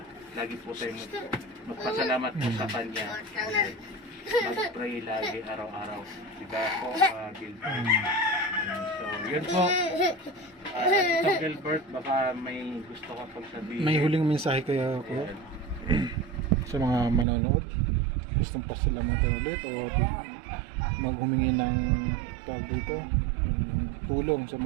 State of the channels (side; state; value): left; drops out; at 17.2 s